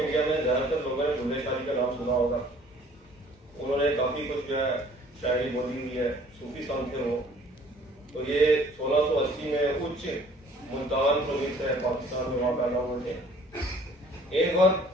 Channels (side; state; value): both; normal; correlation 0.55